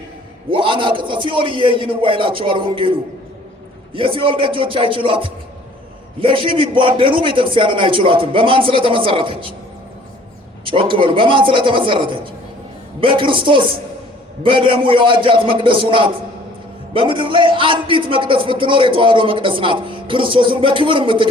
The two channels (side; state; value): both; normal; correlation 0.54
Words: ወአናቅጸ ሲኦል ይይንዋ ይላቸዋል ወንጌሉ። የሲኦል ደጆች አይችሏትም። ለሺህ ቢቧደኑ ቤተክርስቲያንን አይችሏትም። በማን ስለተመሰረተች? ጮክ በሉ። በማን ስለተመሰረተች? በክርስቶስ በደሙ የዋጃት መቅደሱ ናት። በምድር ላይ አንዲት መቅደስ ብትኖር የተዋህዶ መቅደስ ናት፣ ክርስቶስን በክብር